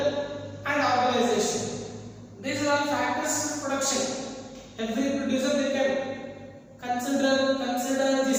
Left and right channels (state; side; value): identical; both; correlation 1.00